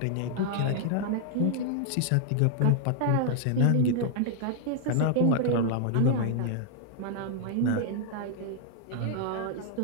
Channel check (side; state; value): both; different; correlation -0.01